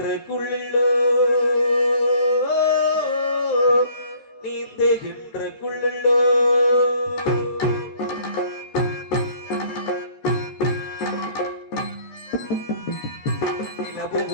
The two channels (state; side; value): late; right; 13 ms